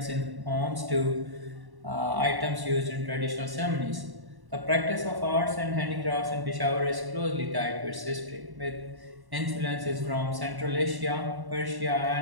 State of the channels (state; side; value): late; left; 1.1 ms